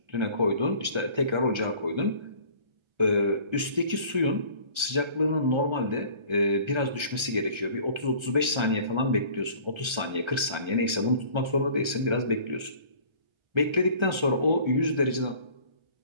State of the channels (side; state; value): left; late; 1.3 ms